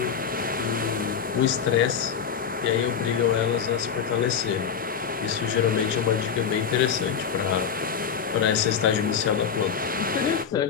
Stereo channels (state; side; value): quieter; right; 7.1 dB